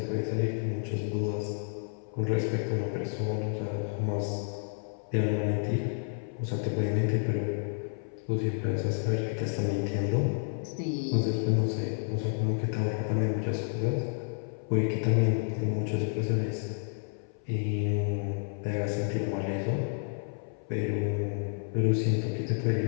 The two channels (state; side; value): silent; right; 56 dB below the other